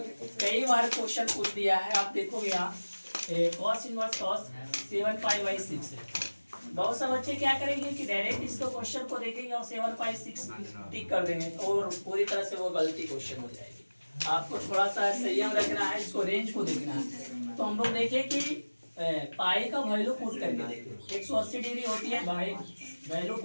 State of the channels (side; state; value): both; inverted; correlation -1.00